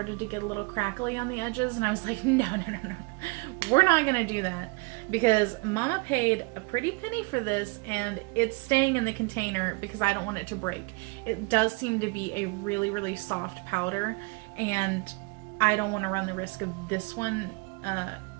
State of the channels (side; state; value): left; quieter; 28.4 dB